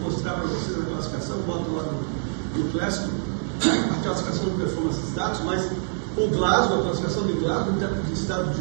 mostrar para vocês a classificação, boto lá no clássico, a classificação do performance status, mas o Glasgow, a classificação de Glasgow, de estado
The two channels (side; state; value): left; silent; digital silence